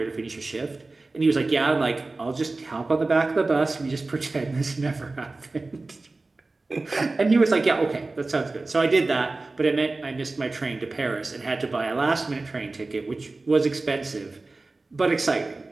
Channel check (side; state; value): left; quieter; 3.4 dB